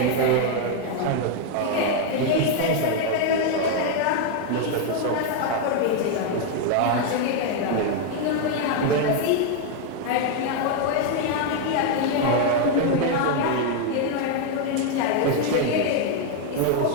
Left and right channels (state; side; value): different; both; correlation 0.00